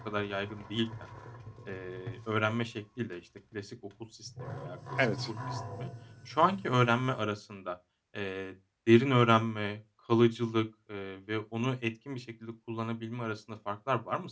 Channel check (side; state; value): both; identical; correlation 1.00